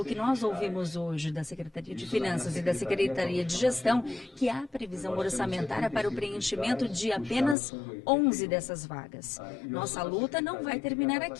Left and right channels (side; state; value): right; drops out; at 7.6 s